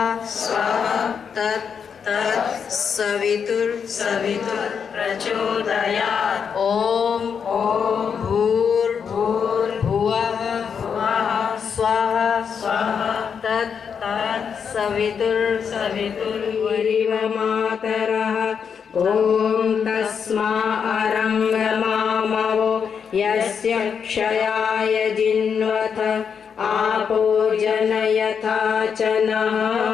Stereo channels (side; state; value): right; quieter; 6.8 dB